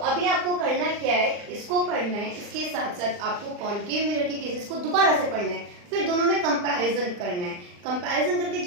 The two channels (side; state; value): left; late; 39 ms